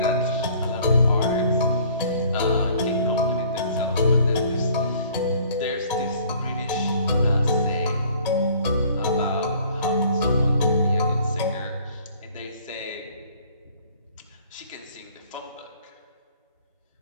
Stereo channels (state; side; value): inverted; both; correlation -0.55